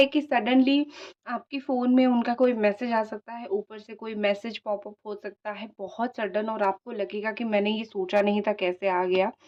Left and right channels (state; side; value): identical; both; correlation 1.00